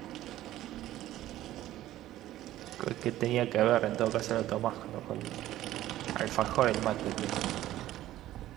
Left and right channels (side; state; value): left; quieter; 14.2 dB